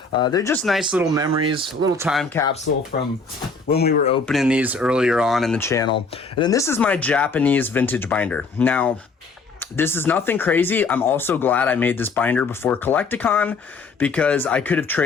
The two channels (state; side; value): quieter; right; 4.1 dB